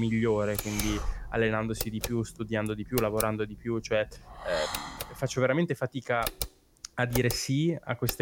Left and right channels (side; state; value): both; identical; correlation 1.00